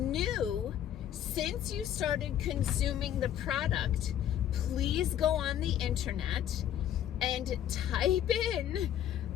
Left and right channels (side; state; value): right; quieter; 10.7 dB